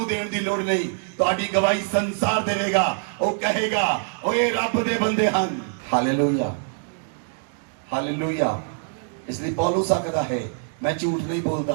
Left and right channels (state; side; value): silent; left; digital silence